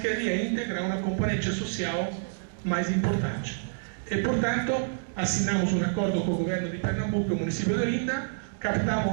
integrar uma componente social mais importante. E, portanto, assinamos um acordo com o governo de Pernambuco e o município de Olinda, captamos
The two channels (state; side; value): silent; left; digital silence